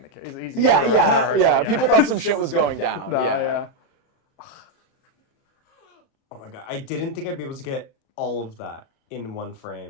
the case. Yeah. People thought some shit was going down. No, yeah. Oh my god, I didn't think I'd be able to get all of that in one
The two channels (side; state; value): right; late; 37 ms